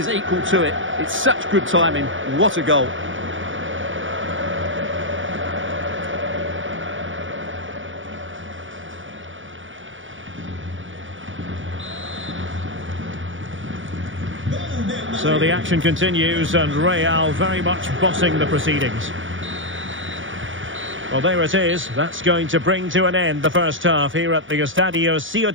equal to it. It's such good timing. What a goal. So the action continues, and Real very much bossing the proceedings. Well, there it is. That's going to bring to an end the first half here at the Estadio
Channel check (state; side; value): late; left; 0.56 ms